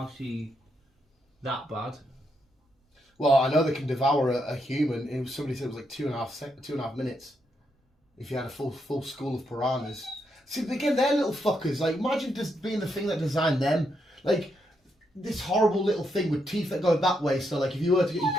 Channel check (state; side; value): normal; both; correlation 0.80